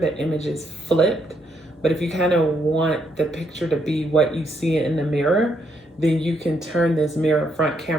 image is flipped. But if you kind of want the picture to be what you see in the mirror, then you can turn this mirror front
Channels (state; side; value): normal; both; correlation 0.75